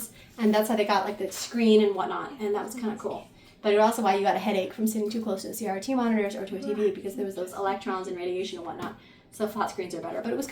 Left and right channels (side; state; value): both; identical; correlation 1.00